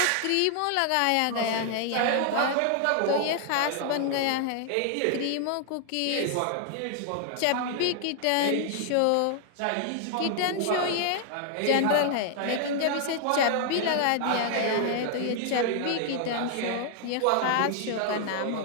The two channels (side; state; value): both; different; correlation 0.00